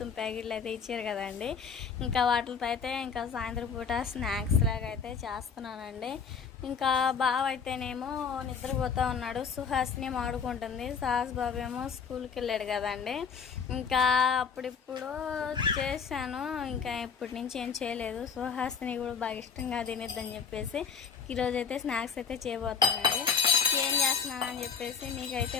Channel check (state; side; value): quieter; right; 6.3 dB